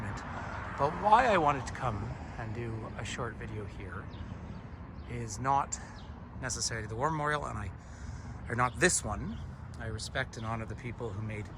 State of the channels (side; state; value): both; identical; correlation 1.00